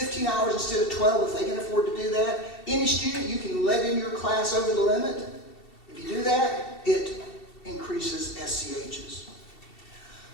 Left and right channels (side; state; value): right; late; 2.7 ms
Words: hours instead of 12 if they can afford to do that. Any student you can let in your class over the limit. If you do that, it increases SCHs.